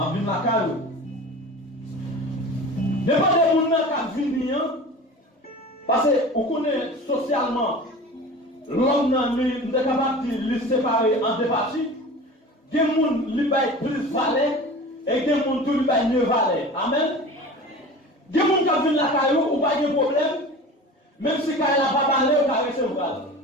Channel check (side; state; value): both; normal; correlation 0.37